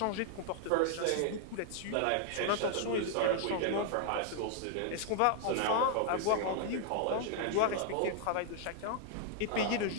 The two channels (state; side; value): different; both; correlation 0.00